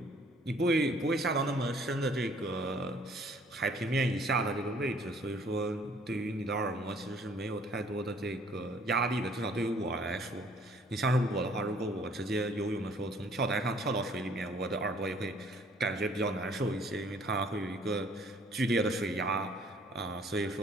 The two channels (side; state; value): both; normal; correlation 0.59